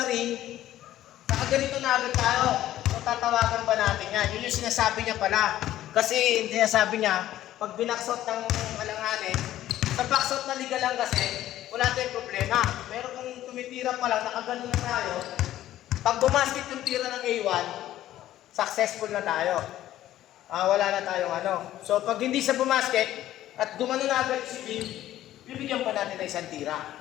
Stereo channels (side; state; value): right; quieter; 13.4 dB